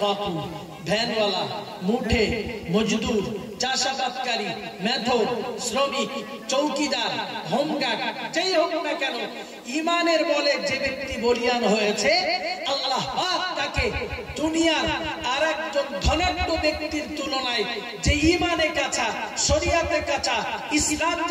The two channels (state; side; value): identical; both; correlation 1.00